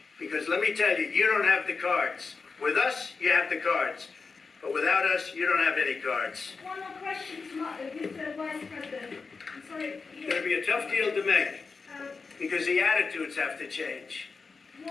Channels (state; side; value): quieter; right; 4.6 dB